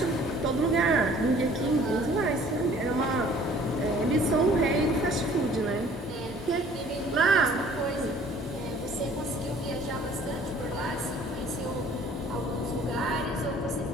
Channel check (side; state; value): both; normal; correlation 0.53